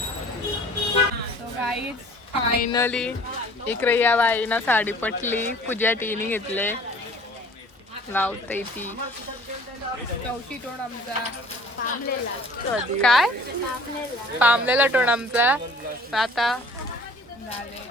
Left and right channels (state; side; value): normal; both; correlation 0.50